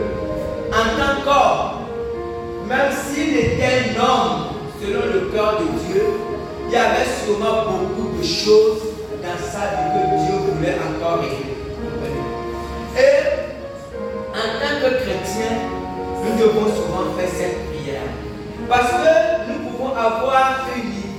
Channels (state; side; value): identical; both; correlation 1.00